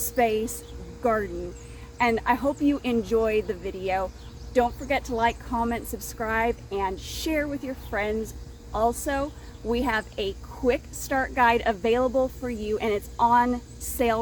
garden. And I hope you enjoy the video. Don't forget to like, comment, subscribe, and share with your friends. Also, we have a quick start guide available for you, and it's on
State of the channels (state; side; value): identical; both; correlation 1.00